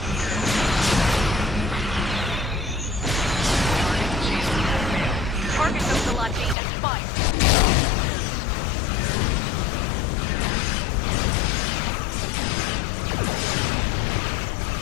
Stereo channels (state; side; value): drops out; right; at 6.6 s